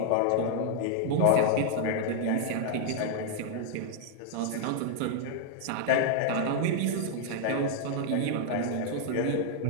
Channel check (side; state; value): both; different; correlation 0.00